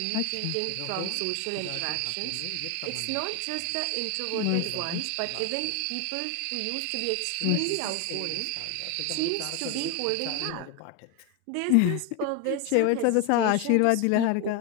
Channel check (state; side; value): different; both; correlation 0.01